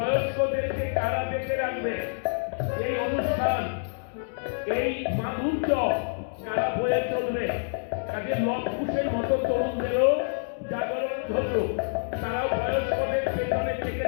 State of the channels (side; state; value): right; silent; 60 dB below the other